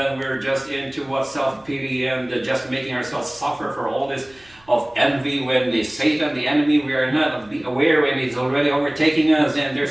we're just into what self-pity and just making ourselves suffer for all this of envy when the Satan, the enemy, we are not aware when he's already overtaking us and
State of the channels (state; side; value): noise; right; hum, 30 dB below the sound